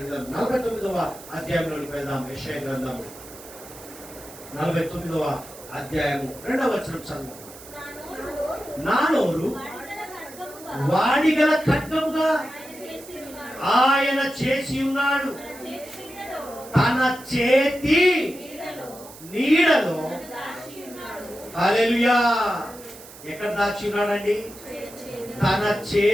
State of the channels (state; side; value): noise; right; hiss, 18 dB below the sound